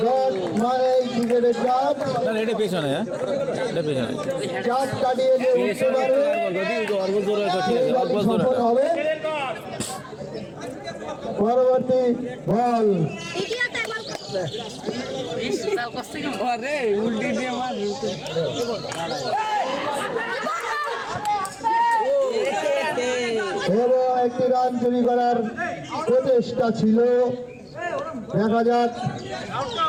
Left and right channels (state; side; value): identical; both; correlation 1.00